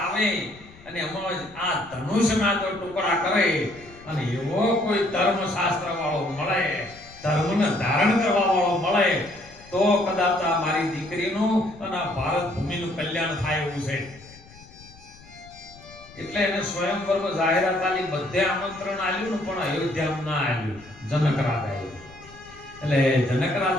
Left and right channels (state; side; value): noise; left; rumble, 22 dB below the sound